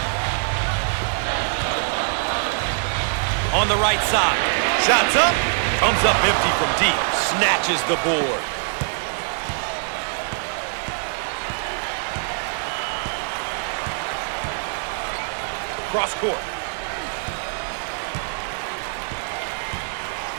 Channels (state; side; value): silent; left; 63 dB below the other